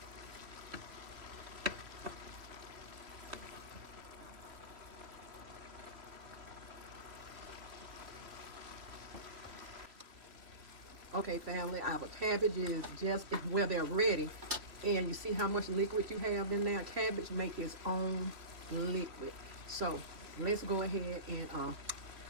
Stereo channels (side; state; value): left; late; 3.4 ms